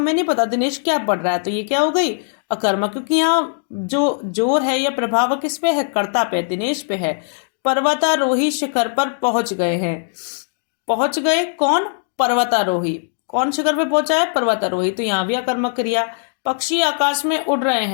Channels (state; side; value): silent; right; digital silence